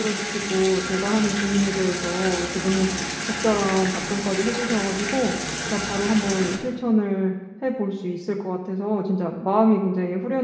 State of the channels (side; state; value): both; identical; correlation 1.00